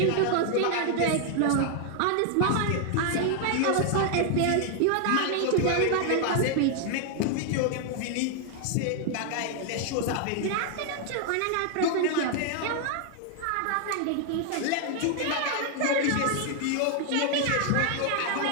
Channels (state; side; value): different; both; correlation 0.00